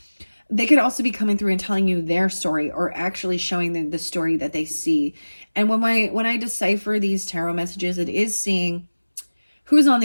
They could also be coming through and telling you their story, or actually showing the story that they see. And when I decipher these tarot messages, it is seeing who's on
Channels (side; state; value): both; inverted; correlation -1.00